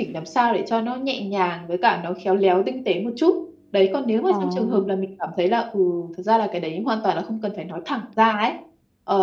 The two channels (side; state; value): both; identical; correlation 1.00